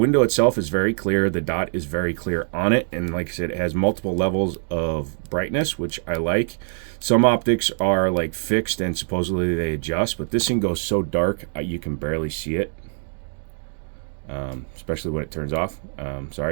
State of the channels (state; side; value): silent; left; digital silence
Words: itself, is very clear. The dot is very clear on it. And like I said, it has multiple levels of brightness, which I like. Some optics are like fixed and supposedly they adjust, but this thing goes so dark you can barely see it, especially when it turns off.